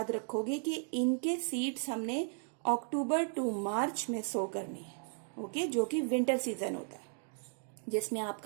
रखोगे कि इनके सीड्स हमने अक्टूबर टू मार्च में सो करनी है, ओके, जो कि विंटर सीजन होता है, जिसमें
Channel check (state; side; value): silent; left; 54 dB below the other